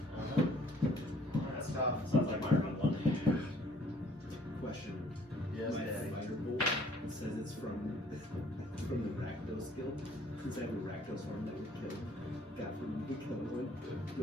That's tough. Sounds like my run one. Question. Yes, My Daddy. fighter bolt, it says it's from the Rakdos guild. Since I have a Rakdos form that would kill, got from the killing one, do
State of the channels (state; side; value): normal; both; correlation 0.58